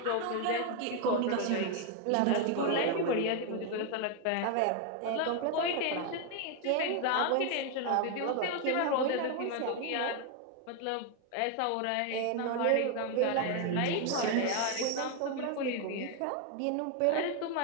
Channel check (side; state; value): both; different; correlation 0.01